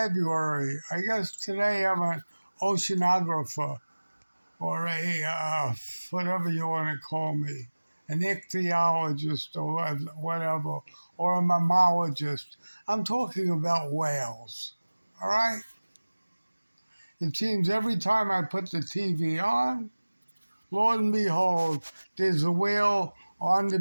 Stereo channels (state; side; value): inverted; both; correlation -1.00